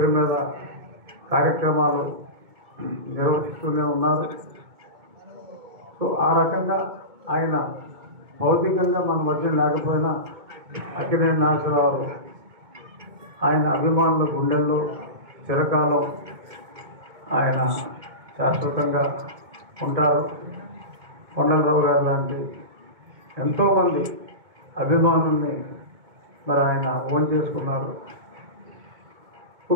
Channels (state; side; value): late; left; 2.2 ms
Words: మీద కార్యక్రమాలు నిర్వహిస్తూనే ఉన్నారు. సో ఆ రకంగా ఆయన భౌతికంగా మన మధ్య లేకపోయినా అక్కినేని నాగేశ్వరరావు ఆయన అభిమానుల గుండెల్లో చిరకాలం ఆయన శాశ్వతంగా ఉంటారు. కొండలరావు గారు లాంటి ఎంతోమంది అభిమానుల్ని మరి ఆయన ఓన్ చేసుకున్నారు.